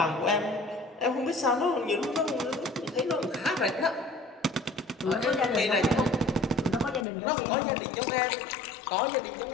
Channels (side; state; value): right; drops out; at 7.1 s